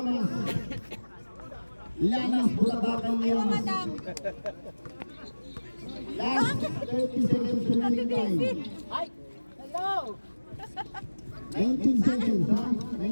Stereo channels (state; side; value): inverted; both; correlation -1.00